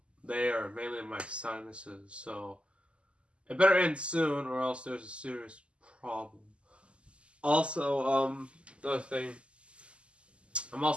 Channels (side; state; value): left; late; 0.054 ms